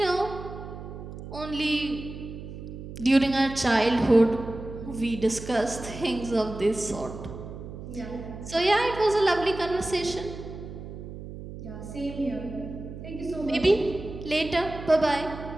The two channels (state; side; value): noise; right; hum, 11 dB below the sound